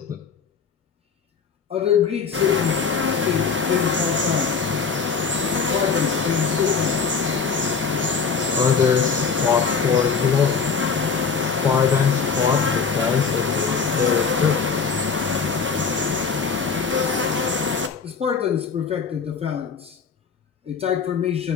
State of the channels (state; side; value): quieter; right; 5.6 dB